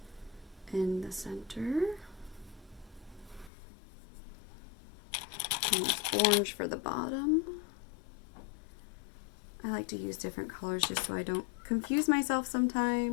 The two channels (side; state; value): right; drops out; at 3.5 s